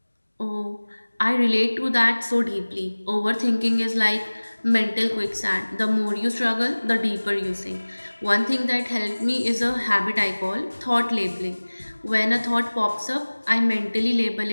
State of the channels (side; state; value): both; inverted; correlation -1.00